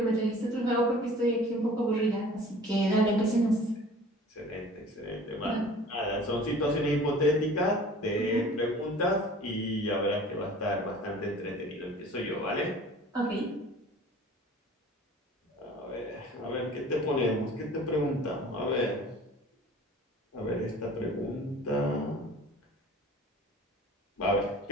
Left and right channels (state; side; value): normal; both; correlation 0.46